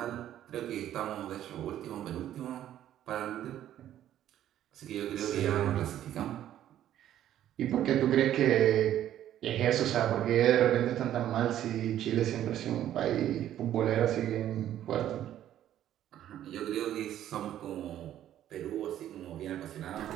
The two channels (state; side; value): quieter; left; 11.7 dB